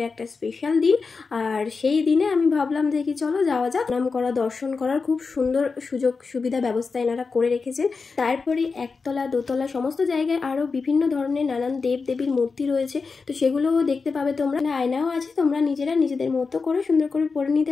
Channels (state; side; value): quieter; right; 4.6 dB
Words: একটা স্পেশাল দিন, আর সেই দিনে আমি ভাবলাম যে কি চলো যাওয়া যাক। নাম করা, দর্শন করার খুব সুন্দর সুযোগ সুবিধা ব্যবস্থা এনারা করে রেখেছেন। তারপরে একতলা দোতলা সমস্ত জায়গায় আরও বিভিন্ন ধরনের নানান দেব দেবীর মূর্তি রয়েছে, তো সেগুলোও দেখতে পাবে তোমরা। আয়নাও আছে, তোমরা নিজেরা নিজেদের মতো করে সুন্দর করে পরে